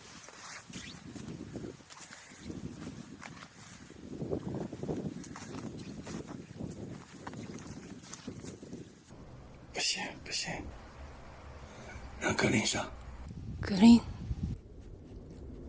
不行不行，让格林上。格林，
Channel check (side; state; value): both; identical; correlation 1.00